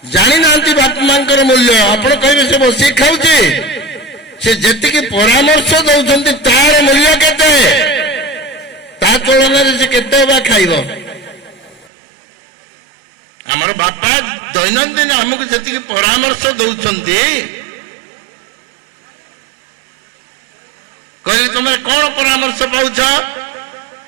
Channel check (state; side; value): drops out; left; at 11.9 s